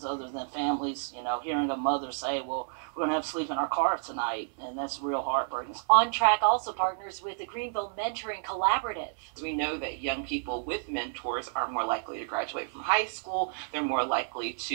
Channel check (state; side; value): silent; left; 58 dB below the other